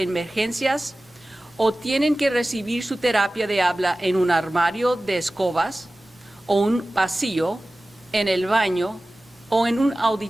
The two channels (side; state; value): both; normal; correlation 0.97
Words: emergencias o tienen que recibir su terapia de habla en un armario de escobas o un pasillo, en el baño o en un